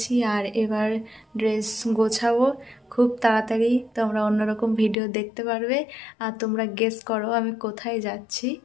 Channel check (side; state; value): right; drops out; at 5.0 s